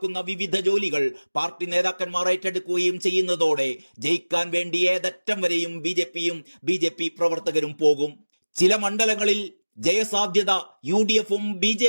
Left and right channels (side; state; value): both; inverted; correlation -1.00